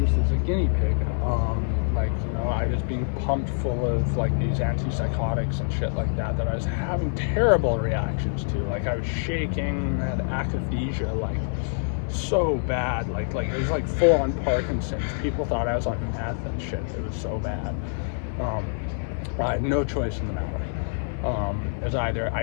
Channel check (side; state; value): right; silent; digital silence